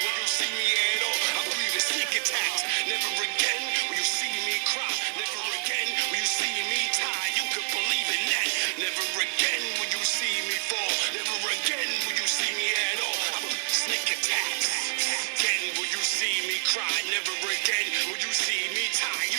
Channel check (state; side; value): silent; left; digital silence